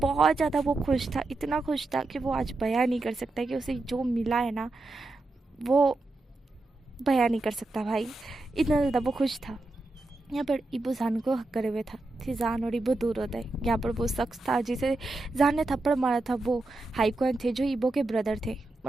ज़्यादा वो खुश था, इतना खुश था कि वो आज बयां नहीं कर सकता कि उसे जो मिला है ना वो बयां नहीं कर सकता भाई, इतना ज़्यादा वो खुश था। यहाँ पर इबो जान को हक करे हुए था, फिर जान और इबो दूर होता है। यहाँ पर वो शख्स था जिसे जान ने थप्पड़ मारा था, वो हाइकॉन थे जो इबो के ब्रदर थे,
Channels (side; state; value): left; quieter; 3.0 dB